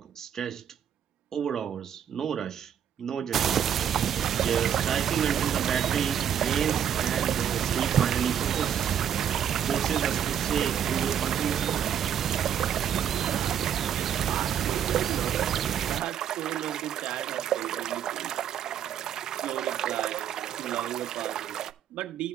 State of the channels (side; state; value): left; quieter; 9.2 dB